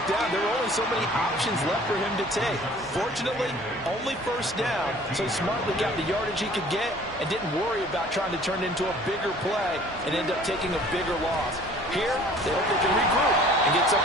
down, there were only so many options left for him to take. Fortunately, only 1st down, so he smartly got the yardage he could get and didn't worry about trying to turn it into a bigger play and end up taking a bigger loss. Here, they hope they can regroup and get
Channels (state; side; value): normal; both; correlation 0.51